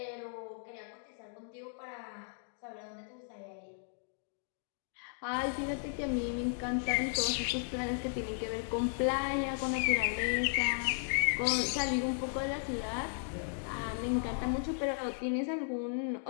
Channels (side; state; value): right; silent; digital silence